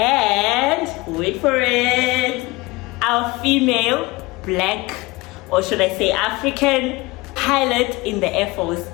wait for it, our female black, or should I say African pilot in the Air Force.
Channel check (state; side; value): quieter; right; 22.4 dB